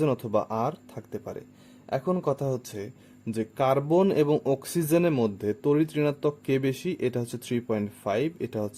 অথবা আর থাকতে পারে। এখন কথা হচ্ছে যে কার্বন এবং অক্সিজেনের মধ্যে তড়িৎ ঋণাত্মক কে বেশি। এটা হচ্ছে 3.5, এটা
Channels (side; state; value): both; identical; correlation 1.00